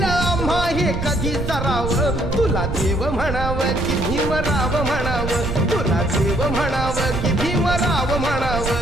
आम्हा हे कधी सराव तुला देव म्हणावं की भीमराव म्हणावं तुला देव म्हणावं की भीमराव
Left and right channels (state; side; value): noise; right; rumble, 5 dB below the sound